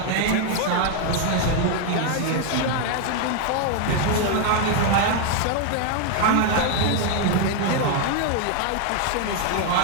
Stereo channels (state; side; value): different; both; correlation 0.00